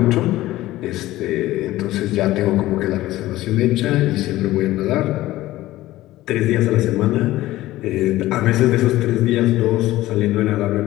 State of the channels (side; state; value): right; quieter; 16.3 dB